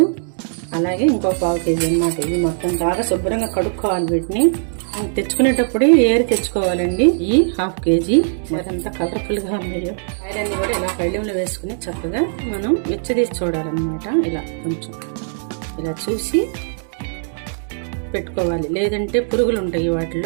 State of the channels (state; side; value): silent; left; digital silence